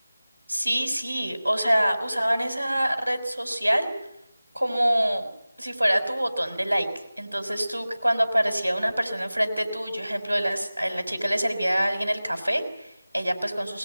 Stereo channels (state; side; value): inverted; both; correlation -0.98